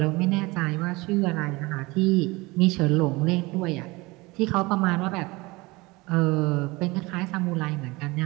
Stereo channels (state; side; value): quieter; left; 23.2 dB